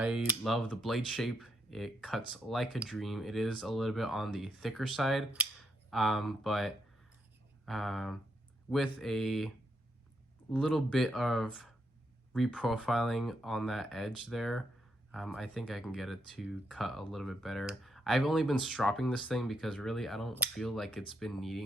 love the blade shape. It cuts like a dream. It is a little bit on the thicker side, but with a little bit of reprofiling on that edge there, I think I can get it to cut a little bit better. I've only been stropping this thing because really I don't feel like it's been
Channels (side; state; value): both; normal; correlation 0.78